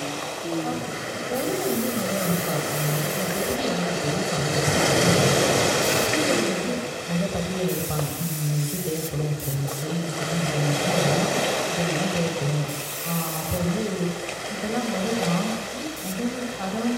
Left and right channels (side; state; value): both; identical; correlation 1.00